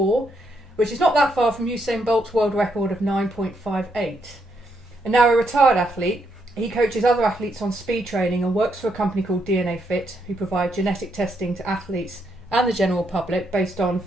which is not that far from Usain Bolt's world record of 9.58. And now a retired athlete, he coaches other athletes on speed training and works for a company called DNA Fit, who provide genetic testing to athletes and the general public based on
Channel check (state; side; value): normal; both; correlation 0.77